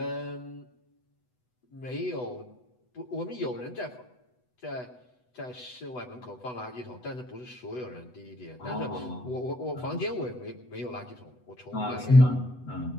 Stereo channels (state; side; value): late; right; 8.1 ms